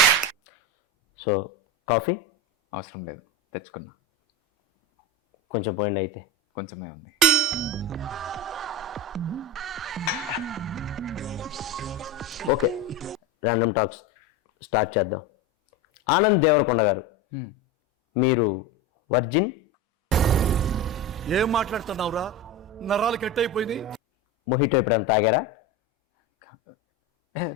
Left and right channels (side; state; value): both; normal; correlation 0.21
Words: సో కాఫీ అవసరం లేదు, తెచ్చుకున్నా. కొంచెం పోయింది అయితే. కొంచెమే ఉంది. ఓకే, ర్యాండమ్ టాక్స్ స్టార్ట్ చేద్దాం. ఆనంద్ దేవరకొండ గారు, మీరు వర్జిన్? ఏం మాట్లాడుతున్నావురా, నరాలు కట్ అయిపోయింది. మొహిటో ఎప్పుడైనా తాగారా?